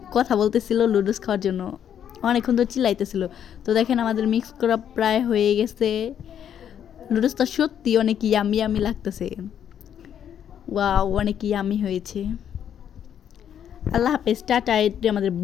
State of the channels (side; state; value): right; quieter; 9.2 dB